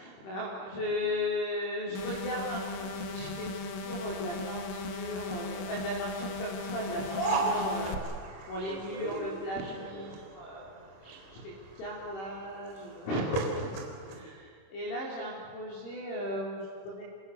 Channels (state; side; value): late; right; 27 ms